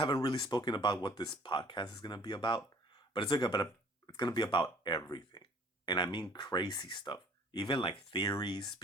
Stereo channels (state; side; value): normal; both; correlation 0.53